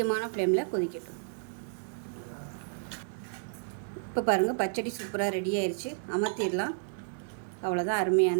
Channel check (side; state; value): left; silent; digital silence